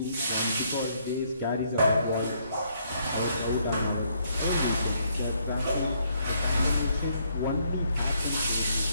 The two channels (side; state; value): both; inverted; correlation -0.71